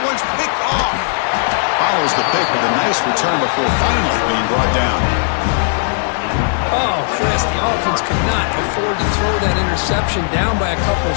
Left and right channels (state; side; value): silent; right; 69 dB below the other